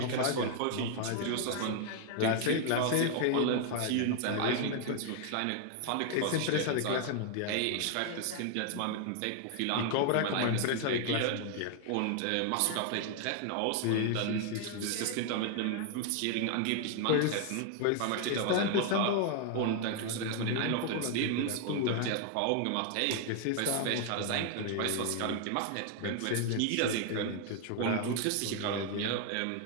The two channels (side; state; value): both; different; correlation 0.00